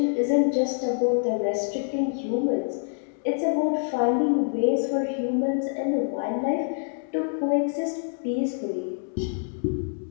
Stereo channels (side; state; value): right; silent; digital silence